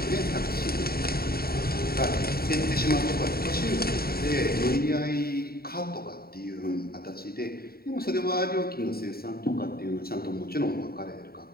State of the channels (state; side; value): late; right; 0.44 ms